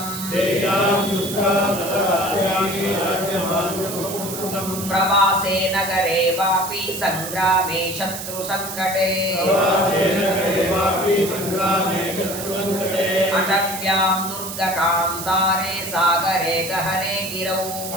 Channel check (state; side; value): noise; right; hiss, 8 dB below the sound